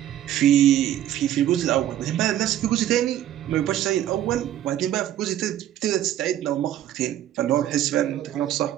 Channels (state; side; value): quieter; left; 12.2 dB